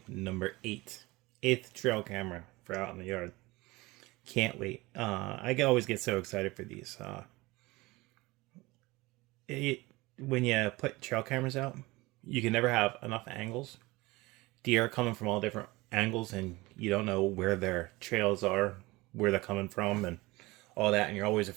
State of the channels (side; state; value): left; quieter; 21.7 dB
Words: number 8. 8th trail camera for out in the yard. Can't wait. I always get so excited for these. When you put trail cameras out, you can never have enough angles. Deer are coming from all different angles, and you don't know where their trails are, where they're coming from, and all that, and you're always